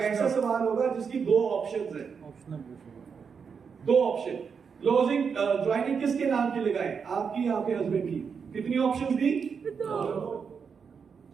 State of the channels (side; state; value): left; quieter; 6.2 dB